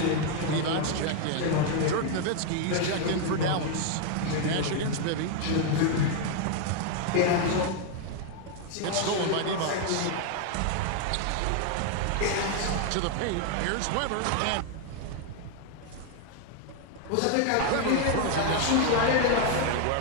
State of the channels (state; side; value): different; both; correlation 0.00